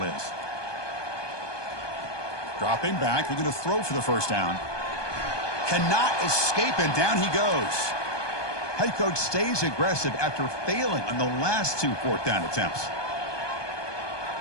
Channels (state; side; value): late; right; 1.2 ms